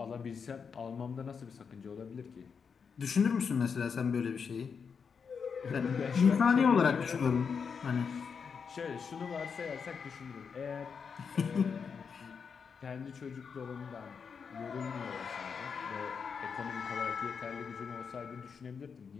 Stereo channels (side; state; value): right; quieter; 6.1 dB